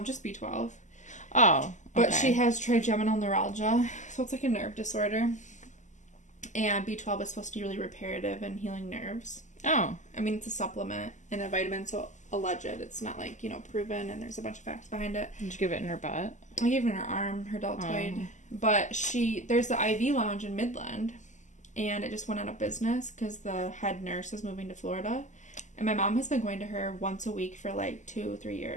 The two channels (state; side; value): late; right; 0.35 ms